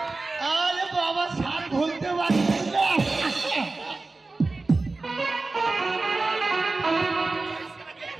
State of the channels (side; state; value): left; quieter; 3.5 dB